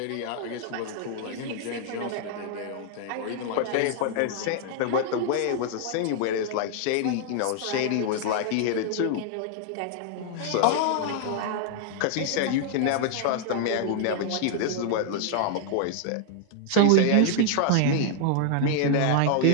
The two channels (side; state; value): both; different; correlation 0.00